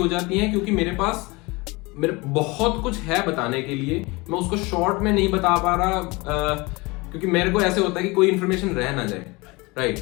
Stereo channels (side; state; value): right; quieter; 24.6 dB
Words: जाती हैं क्योंकि मेरे बहुत कुछ है बताने के लिए, मैं उसको शॉर्ट में नहीं बता पा रहा, क्योंकि मेरे को ऐसे होता है कि कोई इन्फॉर्मेशन रह ना जाए, राइट।